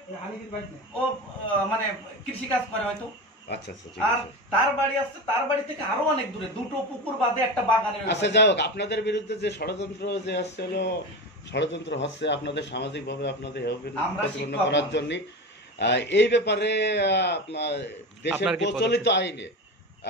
ও মানে কৃষি কাজ করে হয়তো। আচ্ছা আচ্ছা। আর তার বাড়ি আছে, তার বাড়ি থেকে আরো অনেক দূরে, 2টো পুকুর বাদে একটা বাগানের। আচ্ছা যাই হোক, আপনাদের বিরুদ্ধে যে ষড়যন্ত্র যে আসছে হলো ষড়যন্ত্র হচ্ছে আপনাদের সামাজিকভাবে আপনাদের প্রতিপন্ন করার জন্য, এই ব্যাপারে দেশের প্রচলিত আইনে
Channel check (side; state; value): both; normal; correlation 0.25